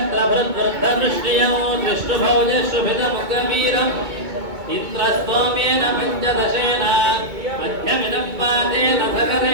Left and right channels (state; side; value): late; left; 2.2 ms